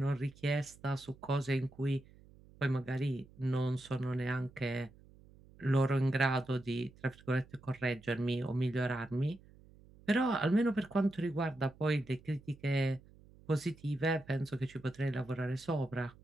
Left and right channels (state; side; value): noise; right; hum, 24 dB below the sound